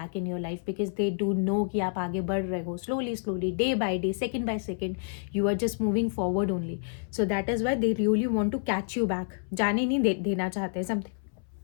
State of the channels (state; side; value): silent; right; 59 dB below the other